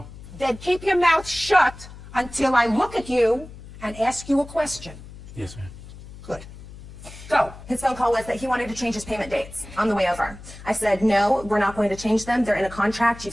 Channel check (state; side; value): noise; left; hum, 16 dB below the sound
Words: Then keep your mouth shut until I look at you and ask you a question. Yes, ma'am. Good. Go. his phone call was that he wanted to change his payment dates on the way over. I said, no, we're not going to change them. They're in a contract. You've